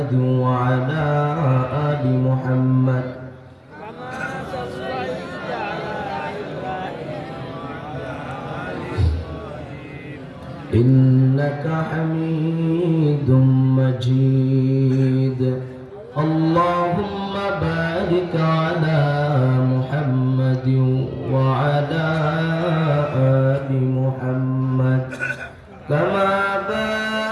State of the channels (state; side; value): identical; both; correlation 1.00